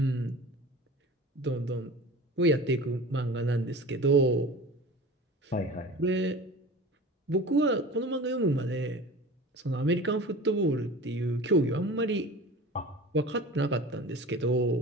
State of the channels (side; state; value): both; normal; correlation 0.37